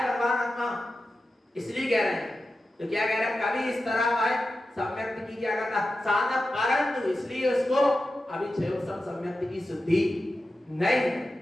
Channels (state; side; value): normal; both; correlation 0.92